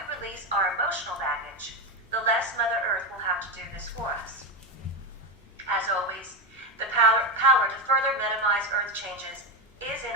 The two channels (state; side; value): normal; both; correlation 0.13